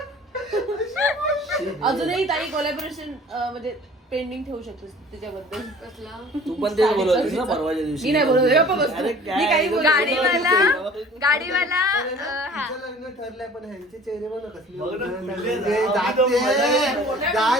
अजूनही ताई कोलॅबोरेशन म्हणजे पेंडिंग ठेवू शकतोस त्याच्याबद्दल. कसला तू पण तेच बोलत होतीस ना परवाच्या दिवशी. मी नाही बोलत होते, गप्प बस तू. अरे मी काही बोलत गाडीवाला हा तिचं लग्न ठरलंय पण ह्यांचे चेहरे बघ ना कसले बघ ना, उजळले.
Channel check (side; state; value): both; normal; correlation 0.48